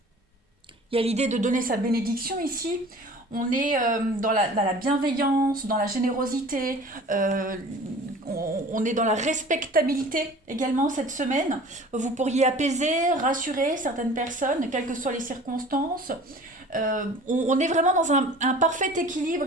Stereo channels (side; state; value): both; normal; correlation 0.44